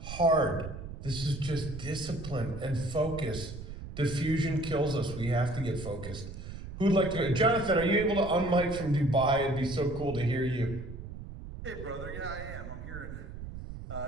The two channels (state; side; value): noise; right; rumble, 10 dB below the sound